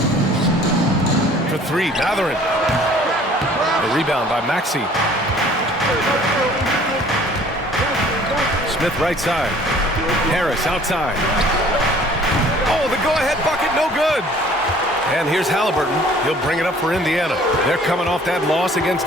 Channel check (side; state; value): both; normal; correlation 0.53